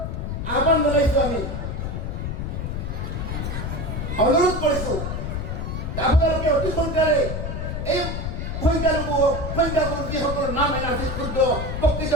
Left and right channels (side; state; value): left; noise; rumble, 4 dB below the sound